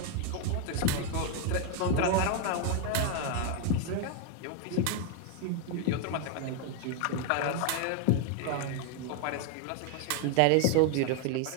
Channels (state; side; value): different; both; correlation 0.01